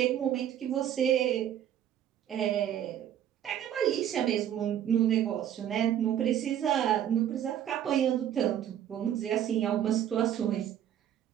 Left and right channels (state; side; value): quieter; left; 10.5 dB